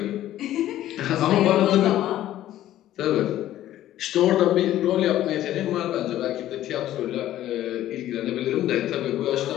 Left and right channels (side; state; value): right; quieter; 13.2 dB